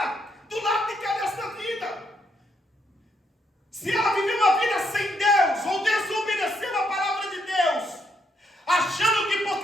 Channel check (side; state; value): both; normal; correlation 0.76